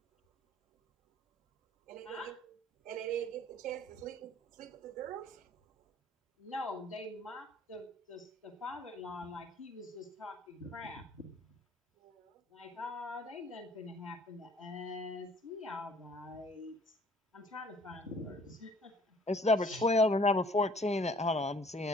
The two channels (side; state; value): both; normal; correlation 0.56